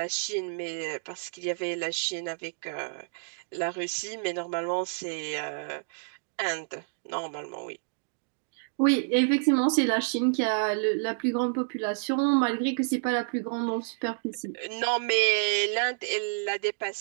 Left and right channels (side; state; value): left; silent; digital silence